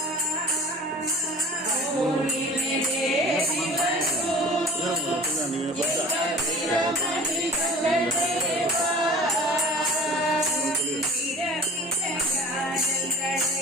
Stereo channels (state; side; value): normal; both; correlation 0.43